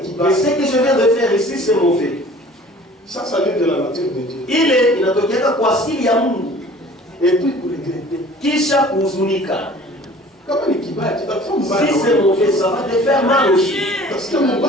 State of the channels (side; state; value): both; normal; correlation 0.48